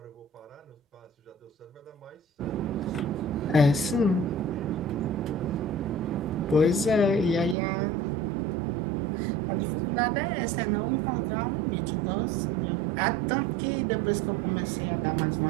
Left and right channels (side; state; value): left; drops out; at 7.6 s